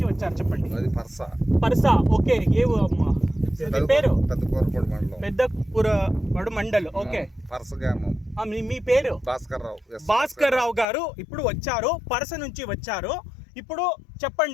వచ్చారు చెప్పండి. పర్సా. ఓకే. ఏ పేరు? పెద్దకూరపాడు మండల్. ఓకే. మీ పేరు? భాస్కర్ రావు గారు ఇప్పుడు వచ్చారు, పరస నుంచి వచ్చారు. ఇప్పుడు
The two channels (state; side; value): drops out; right; at 10.9 s